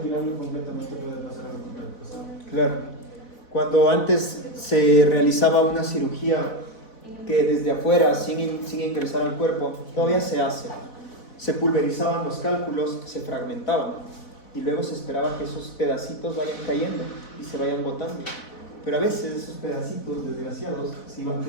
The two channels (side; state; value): right; late; 4.1 ms